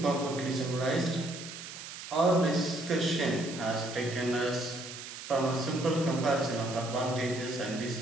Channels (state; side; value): noise; right; hiss, 11 dB below the sound